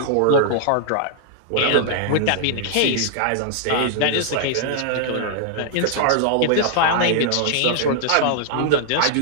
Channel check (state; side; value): different; both; correlation -0.01